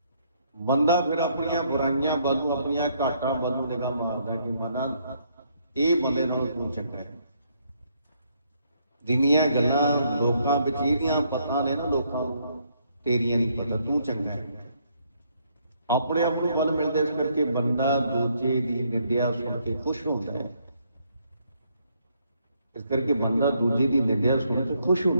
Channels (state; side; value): inverted; both; correlation -0.71